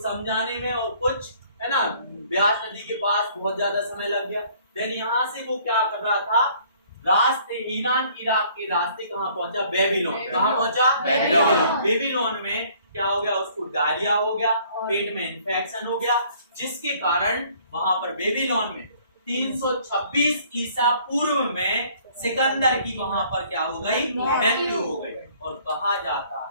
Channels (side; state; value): both; inverted; correlation -0.58